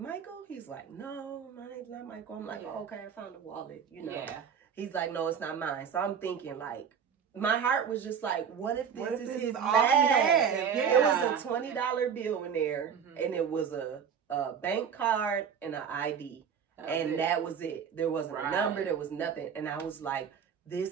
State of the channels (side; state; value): left; quieter; 7.4 dB